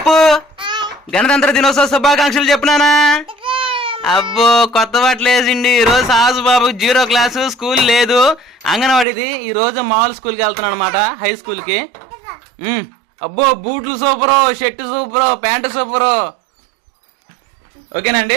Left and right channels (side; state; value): left; drops out; at 9.1 s